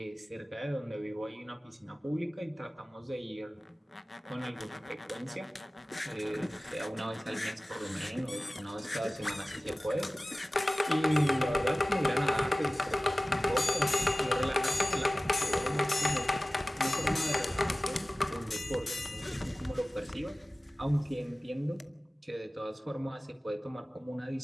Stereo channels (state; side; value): normal; both; correlation 0.97